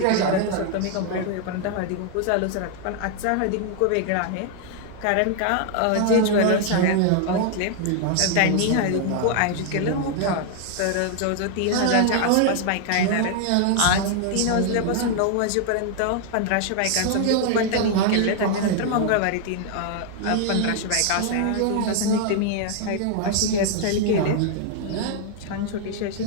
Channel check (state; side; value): different; both; correlation 0.00